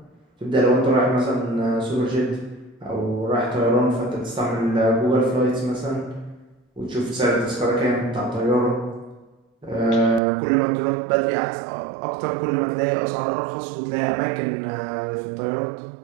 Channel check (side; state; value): left; drops out; at 10.2 s